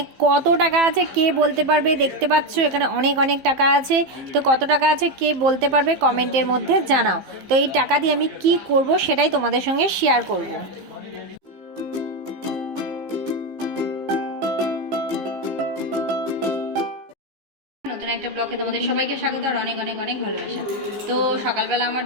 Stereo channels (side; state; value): left; late; 15 ms